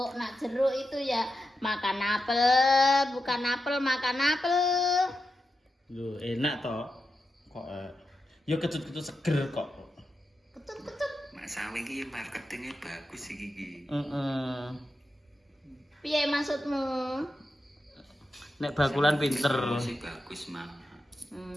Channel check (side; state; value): both; normal; correlation 0.88